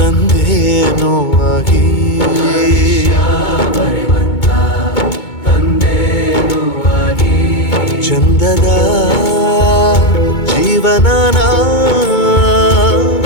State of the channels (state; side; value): late; right; 2.2 ms